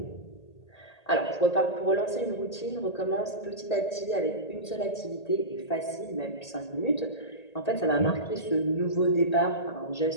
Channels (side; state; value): right; late; 1.8 ms